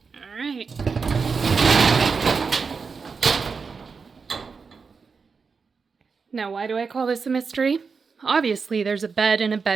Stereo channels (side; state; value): left; quieter; 5.1 dB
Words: All right. Now, why do I call this a mystery? Obviously, there's a bed and a